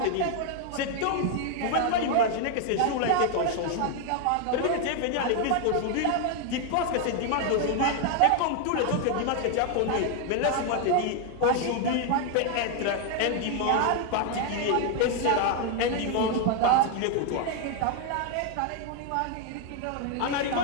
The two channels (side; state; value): both; different; correlation 0.00